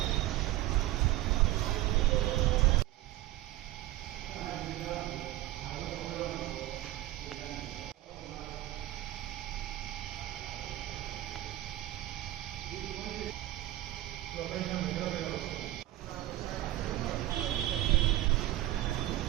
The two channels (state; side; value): quieter; left; 15.7 dB